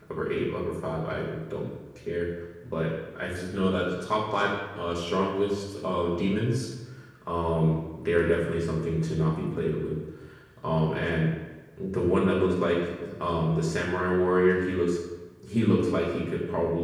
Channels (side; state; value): both; identical; correlation 1.00